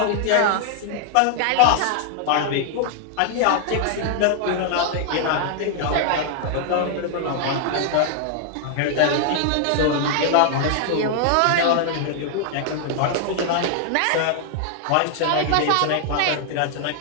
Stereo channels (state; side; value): different; both; correlation 0.00